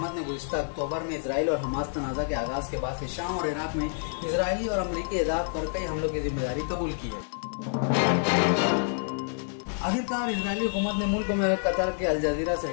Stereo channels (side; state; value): right; silent; digital silence